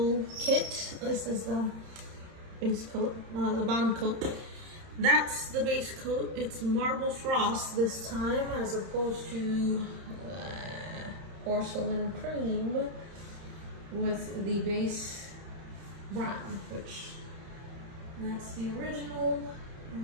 kit. This is the base coat, the bond coat. That's the base coat. It's marble frost this time as opposed to porcelain cream with the base brown, which that's the original.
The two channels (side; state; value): left; late; 31 ms